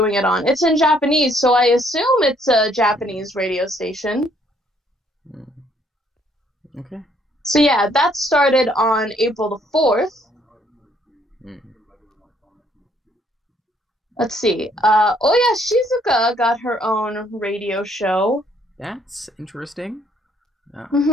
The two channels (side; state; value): both; normal; correlation 0.66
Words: it on, it's in Japanese, so I assume it's a Japanese radio station. Okay. So yeah, that started on April the 4th. Let's see. Oya Shizuka got her own radio show. That's interesting. It's